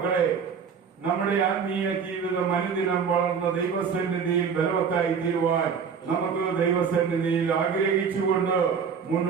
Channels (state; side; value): quieter; left; 6.4 dB